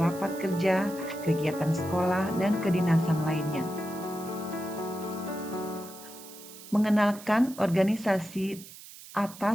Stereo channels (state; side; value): noise; right; hiss, 17 dB below the sound